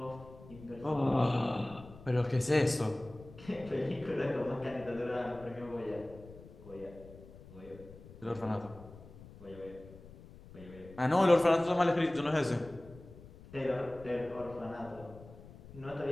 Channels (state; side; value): noise; left; rumble, 18 dB below the sound